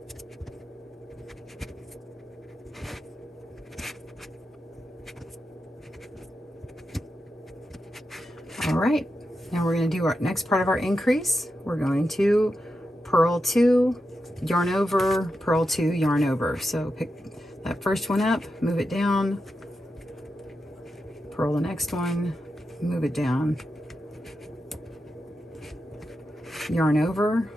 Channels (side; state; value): both; normal; correlation 0.88